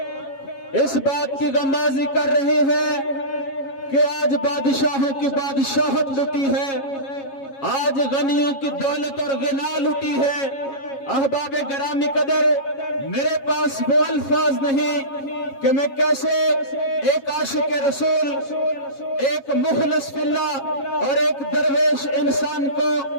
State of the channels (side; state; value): right; late; 7.3 ms